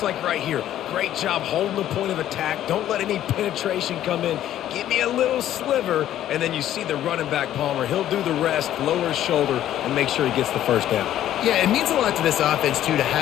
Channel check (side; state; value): right; quieter; 12.1 dB